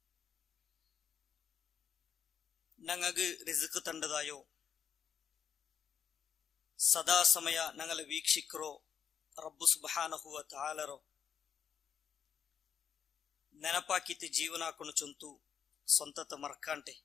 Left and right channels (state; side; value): quieter; right; 7.7 dB